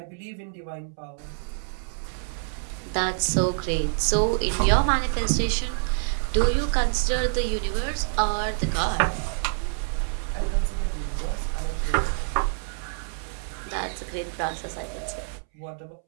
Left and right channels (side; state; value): left; silent; 60 dB below the other